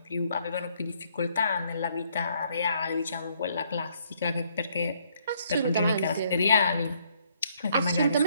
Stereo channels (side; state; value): both; inverted; correlation -0.68